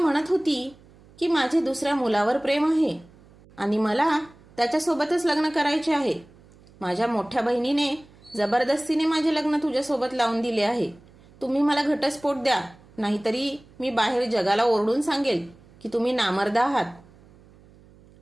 होती की माझे दुसऱ्या मुलावर प्रेम आहे आणि मला त्याच्यासोबतच लग्न करायचे आहे. माझ्या मोठ्या बहिणीने जबरदस्तीने माझे लग्न तुझ्यासोबत लावून दिले आहे. तुम्ही मला घटस्फोट द्या, नाहीतरी मी बाहेर जगाला ओरडून सांगेल की तुम्ही नामर्द आहात.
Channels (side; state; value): right; noise; hum, 26 dB below the sound